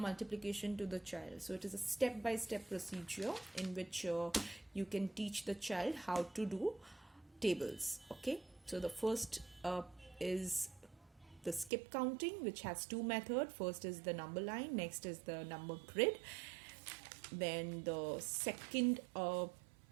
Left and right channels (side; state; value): left; drops out; at 11.7 s